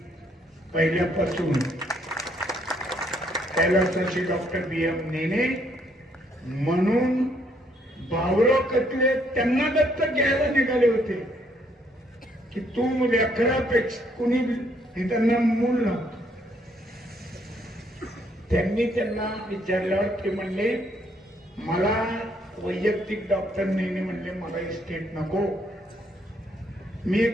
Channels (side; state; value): both; normal; correlation 0.69